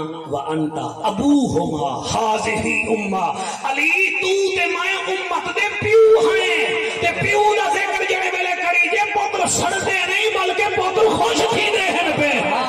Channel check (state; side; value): identical; both; correlation 1.00